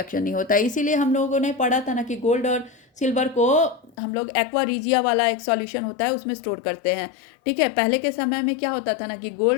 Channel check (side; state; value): right; drops out; at 4.0 s